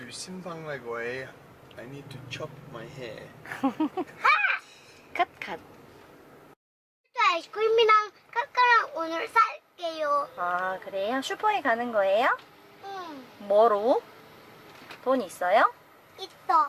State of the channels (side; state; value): both; identical; correlation 1.00